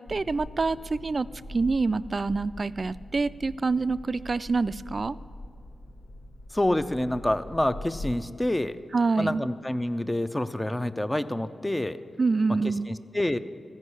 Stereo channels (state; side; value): normal; both; correlation 0.96